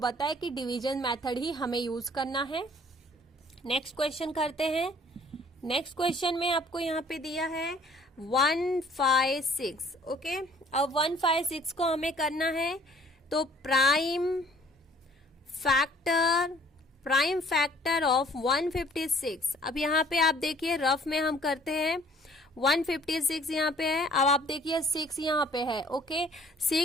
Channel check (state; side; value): normal; both; correlation 0.55